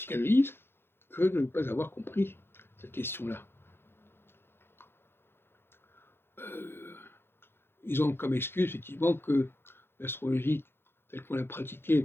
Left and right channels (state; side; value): late; right; 0.11 ms